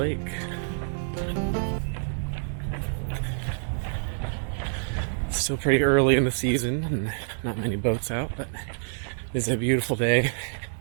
It's still pretty early in the season and not many boats out, but it's a beautiful day.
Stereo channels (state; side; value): silent; left; digital silence